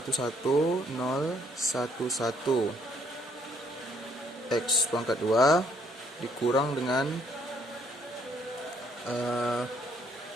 x pangkat 2 dikurang dengan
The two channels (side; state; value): both; normal; correlation 0.67